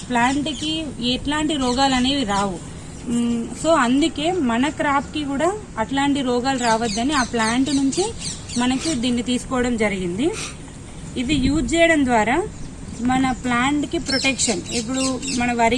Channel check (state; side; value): identical; both; correlation 1.00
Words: ప్లాంట్కి ఎట్లాంటి రోగాలు అనేవి రావు. సో అందుకే మన క్రాప్కి కూడా అట్లాంటి రోగాలు రావద్దని ఆ ప్లాంట్ నుంచి మనకి దీన్ని తీసుకోవడం జరిగింది. ఇది యూజ్ చేయడం ద్వారా మన ప్లాంట్కి ప్రొటెక్షన్. ఇప్పుడు మన